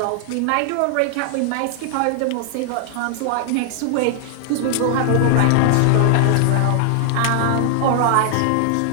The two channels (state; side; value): different; both; correlation 0.00